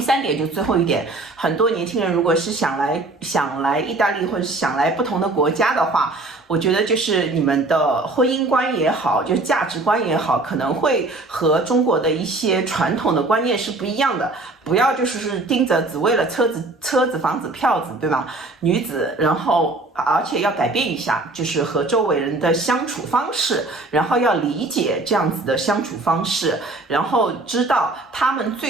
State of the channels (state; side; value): quieter; left; 3.0 dB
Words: 3点就最后一点，很多年轻人如果是想来意大利或者想来不同的国家的话，我觉得就是你们的婚姻观也好，就是价值观也好，可能会和中国的一些传统的观念是不一样的。不要就是盯着只为了车子、房子、票子，对吧？女子，然后而且要改变一下，就是和周围人的相处方式，然后要理解这样子的相处方式，然后知道他们